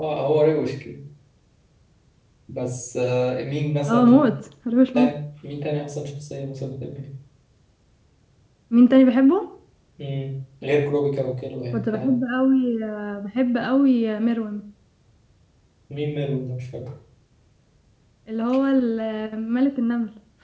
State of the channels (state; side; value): identical; both; correlation 1.00